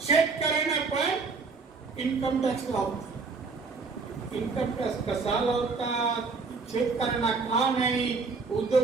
शेतकऱ्यांना पण इन्कम टॅक्स लावतात. इन्कम टॅक्स कसा लावतात? शेतकऱ्यांना का नाही?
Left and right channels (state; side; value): quieter; left; 4.4 dB